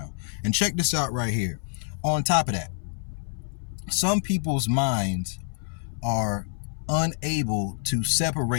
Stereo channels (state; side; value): silent; right; 60 dB below the other